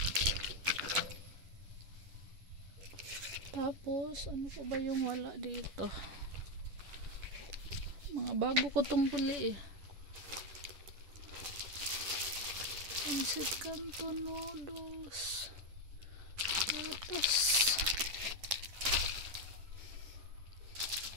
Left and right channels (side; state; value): left; late; 10 ms